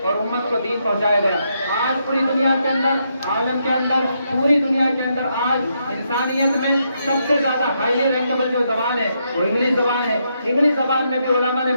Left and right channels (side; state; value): both; inverted; correlation -0.79